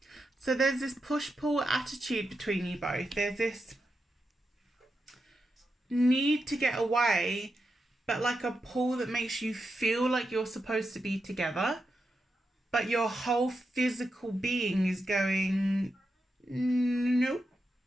So there's this push-pull attitude between you both. There's this need to get away, but like a pull that makes you feel like you're supposed to be together, but your whole physical being is going, nope.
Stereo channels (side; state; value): both; normal; correlation 0.87